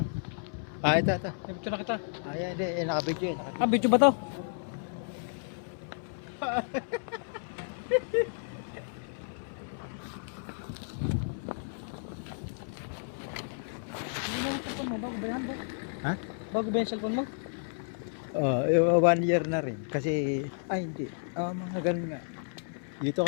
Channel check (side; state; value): right; silent; 57 dB below the other